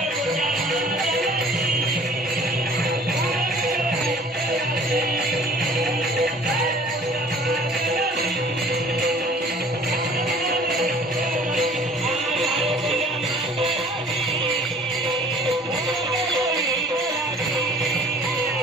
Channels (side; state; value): both; normal; correlation 0.51